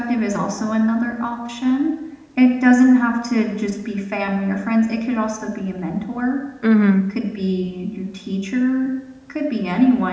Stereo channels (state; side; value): identical; both; correlation 1.00